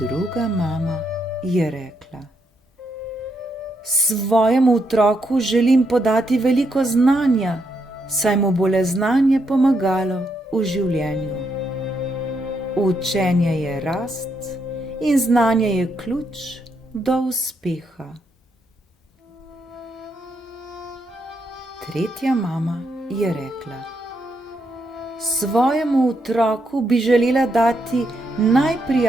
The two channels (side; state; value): both; normal; correlation 0.78